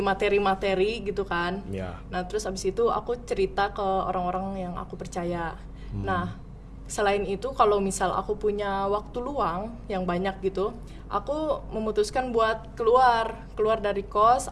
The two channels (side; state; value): both; identical; correlation 1.00